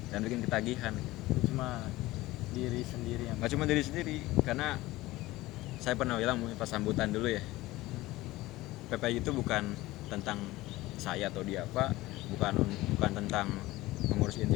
dan bikin ketagihan. Cuma diri sendiri yang Nggak cuma diri sendiri, karena saya pernah bilang pas sambutan dulu ya, PPI itu bukan tentang saya atau dia apa, bukan tentang pengurus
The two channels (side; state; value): right; quieter; 18.3 dB